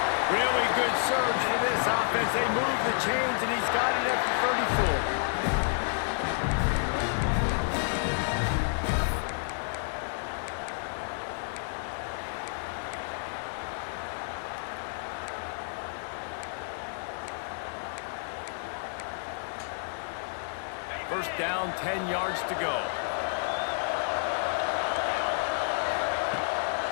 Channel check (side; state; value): right; silent; 58 dB below the other